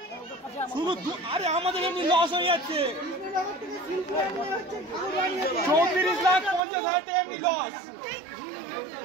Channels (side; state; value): left; drops out; at 6.6 s